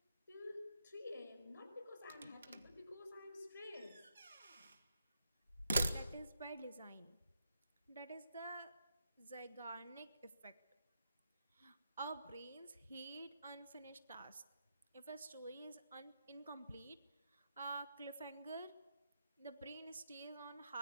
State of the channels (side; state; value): both; inverted; correlation -0.82